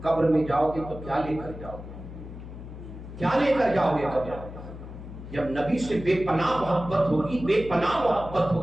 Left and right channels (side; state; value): left; noise; hum, 12 dB below the sound